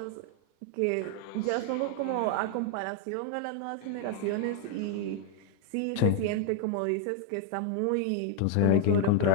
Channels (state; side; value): different; both; correlation 0.00